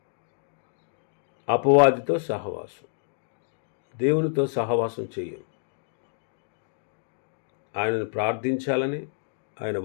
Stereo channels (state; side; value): silent; right; digital silence